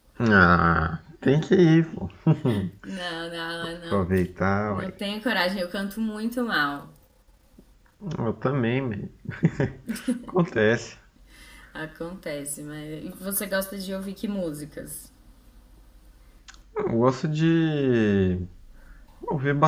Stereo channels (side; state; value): both; identical; correlation 1.00